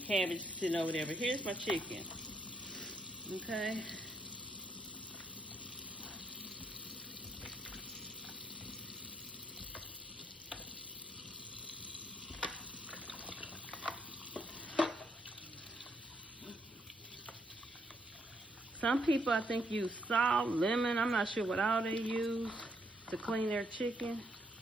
sitting over there, but here's my chicken. Okay. Some people, I think, use salt, lemon. I'm not sure what all they use to clean their chicken.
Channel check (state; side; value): normal; both; correlation 0.74